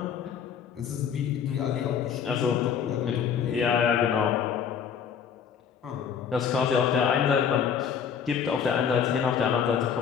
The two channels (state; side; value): quieter; right; 7.5 dB